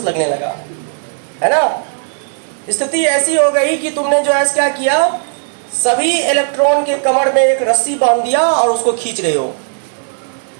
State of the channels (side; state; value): left; silent; 69 dB below the other